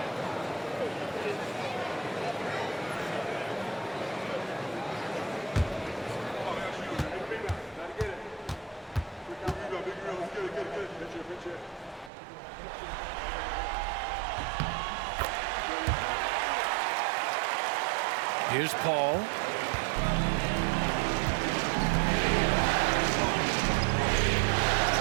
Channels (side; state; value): left; drops out; at 12.1 s